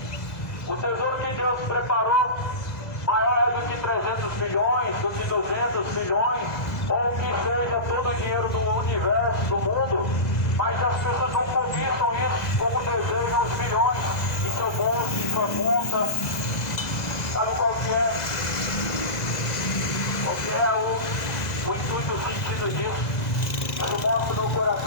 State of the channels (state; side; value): late; right; 2.0 ms